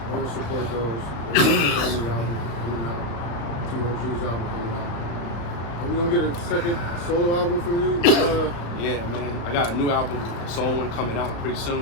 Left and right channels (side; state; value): right; late; 35 ms